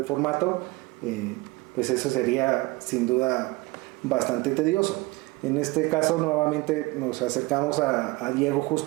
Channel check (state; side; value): quieter; left; 22.4 dB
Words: formato, pues eso sería sin duda bastante tedioso. En este caso, nuevamente nos acercamos a Diego